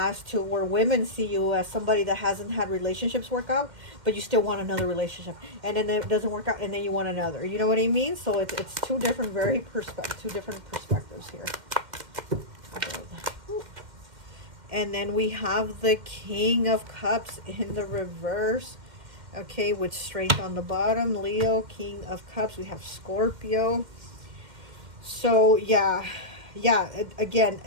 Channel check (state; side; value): late; left; 2.1 ms